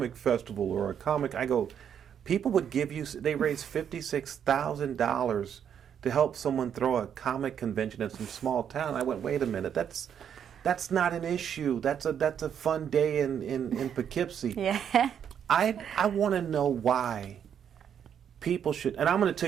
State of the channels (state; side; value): quieter; left; 8.6 dB